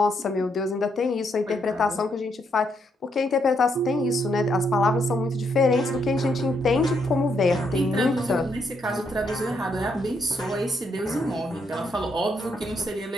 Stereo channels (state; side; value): normal; both; correlation 0.76